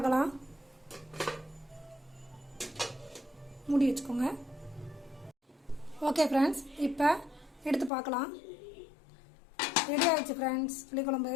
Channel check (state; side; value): drops out; right; at 7.9 s